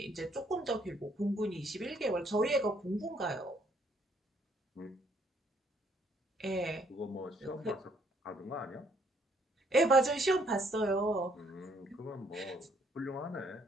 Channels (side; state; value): both; normal; correlation 0.67